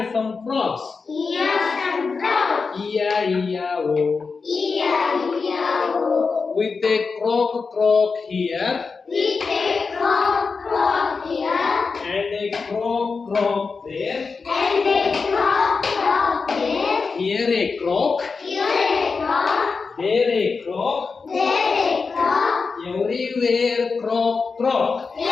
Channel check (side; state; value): right; quieter; 4.7 dB